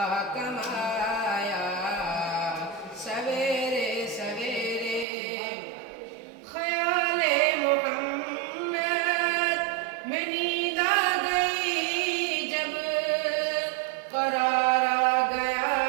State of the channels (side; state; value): left; drops out; at 5.1 s